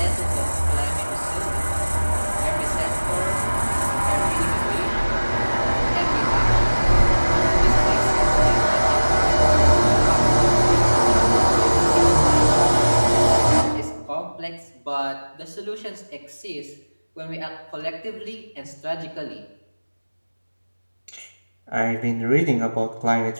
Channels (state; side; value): inverted; both; correlation -1.00